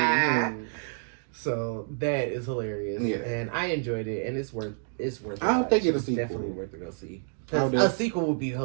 So that is hilarious, and I enjoyed it, and it's worth. I don't think it's definitely worth to go see. A sequel would be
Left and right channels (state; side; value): silent; left; digital silence